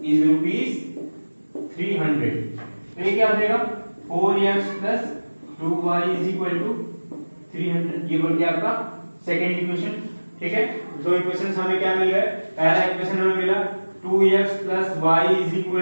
is rupees 300। तो ये क्या हो जाएगा, 4x plus 2y is equal to 300, ये बन गया आपका सेकंड इक्वेशन, ठीक है। दो इक्वेशंस हमें क्या मिल गए, पहला इक्वेशन हमें मिला 2x plus y is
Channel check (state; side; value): inverted; both; correlation -1.00